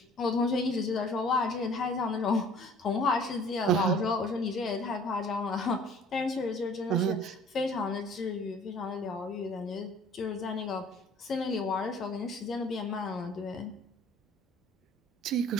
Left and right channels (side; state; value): both; normal; correlation 0.51